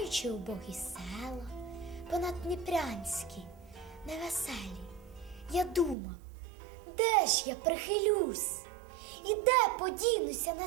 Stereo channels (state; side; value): drops out; left; at 6.0 s